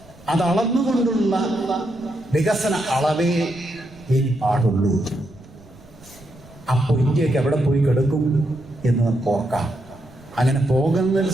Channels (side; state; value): right; noise; rumble, 24 dB below the sound